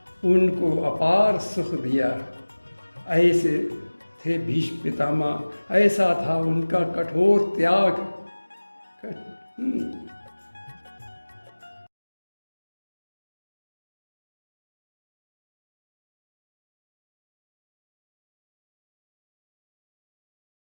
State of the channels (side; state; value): both; inverted; correlation -1.00